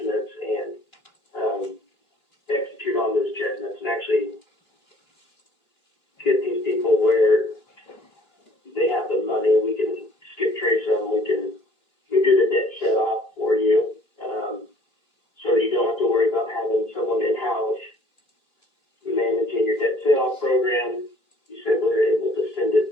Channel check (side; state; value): right; late; 2.9 ms